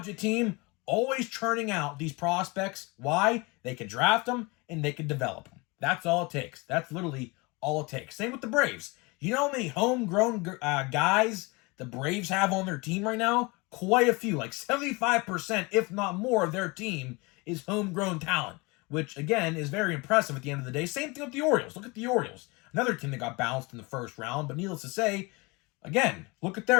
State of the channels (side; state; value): right; quieter; 26.2 dB